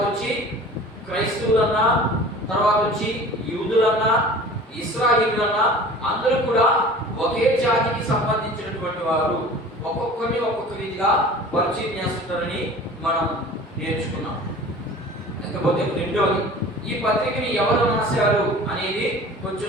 వచ్చి క్రైస్తవులన్నా, తర్వాత వచ్చి యూదులన్నా, ఇశ్రాయేలీయులన్నా అందరూ కూడా ఒకే జాతికి సంబంధించినటువంటి వారు. ఒక్కొక్కరిని ఒక్కొక్క రీతిగా పరిచయం చేస్తుంటారని మనం నేర్చుకున్నాం. లేకపోతే రెండవది, ఈ పత్రికని ఎవరు రాశారు అనేది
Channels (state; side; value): normal; both; correlation 0.42